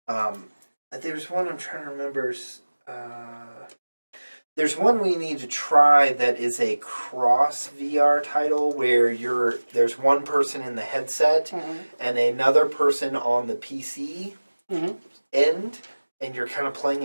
There's one I'm trying to remember. There's one we need to try that is a cross VR title where there's one person in the headset and another person on the PC end, and you're kind of playing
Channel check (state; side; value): inverted; both; correlation -1.00